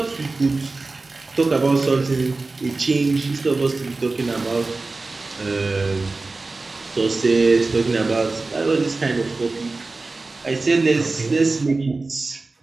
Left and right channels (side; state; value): left; quieter; 3.5 dB